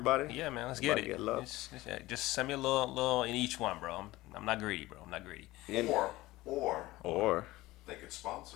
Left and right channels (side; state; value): right; quieter; 18.5 dB